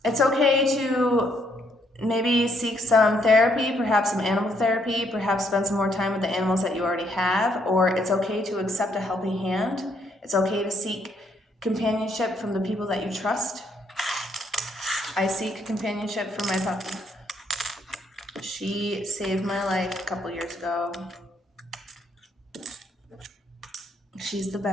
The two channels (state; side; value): normal; both; correlation 0.71